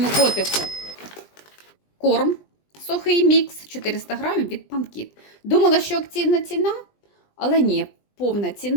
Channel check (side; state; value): right; late; 20 ms